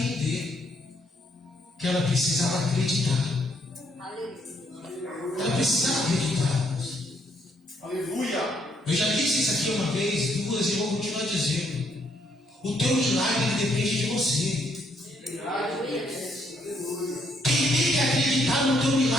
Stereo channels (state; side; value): normal; both; correlation 0.71